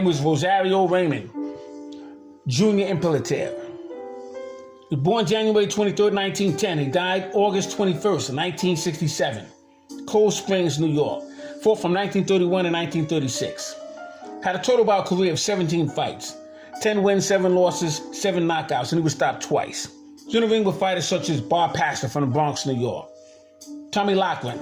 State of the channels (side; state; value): both; identical; correlation 1.00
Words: was Rosario Raymond Jr. Imperator. He was born January 23rd, 1910. He died August 21st, 1967. Cold Springs, New York. Fought from 1931 to 1936. Had a total bout career of 17 fights. 10 wins, 7 losses, 7 knockouts, and he was stopped twice. He was in the ring with fighters such as Bar Pastor from the Bronx, New York. Tommy Laughlin,